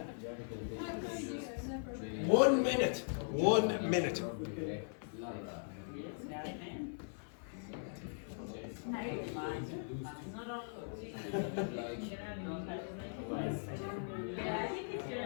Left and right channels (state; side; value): silent; right; 51 dB below the other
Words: 1 minute. 1 minute.